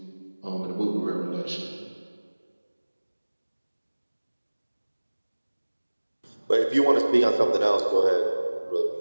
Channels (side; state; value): both; inverted; correlation -1.00